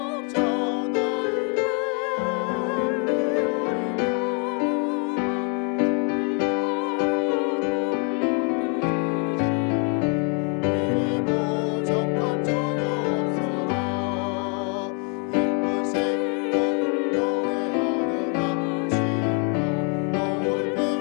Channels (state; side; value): quieter; right; 37.8 dB